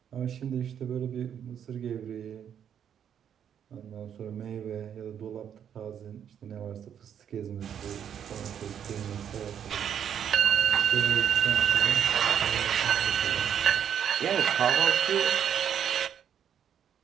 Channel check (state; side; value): quieter; left; 8.8 dB